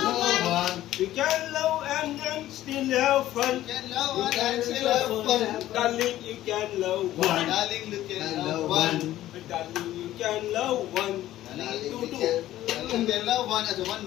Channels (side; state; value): right; quieter; 14.1 dB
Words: love one. You can love and still have fun. You can love one and still have fun. Darling, you can love one. Darling, you can love one. Darling, you can love one. Darling, Two, you two. can love one as a one.